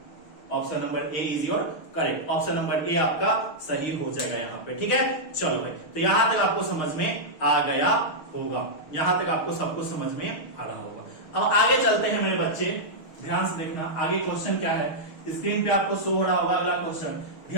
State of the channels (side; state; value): right; late; 6.4 ms